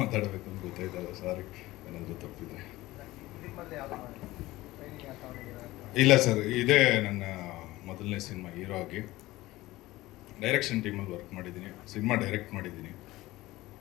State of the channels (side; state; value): right; quieter; 18.3 dB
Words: ಮಾತಾಡಬೇಕು ಅಂತ ಗೊತ್ತಾಯ್ತಲ್ಲ, ಸಾರಿ ಏನಾದರೂ ತಪ್ಪಿದೆ. ಇಲ್ಲ ಸರ್, ಇದೇ ನನ್ನ ಮೊದಲನೇ ಸಿನಿಮಾ ಹೀರೋ ಆಗಿ. ಡೈರೆಕ್ಷನ್ ಟೀಮಲ್ಲಿ ವರ್ಕ್ ಮಾಡಿದ್ದೀನಿ, ಸಿನಿಮಾ ಡೈರೆಕ್ಟ್ ಮಾಡಿದ್ದೀನಿ.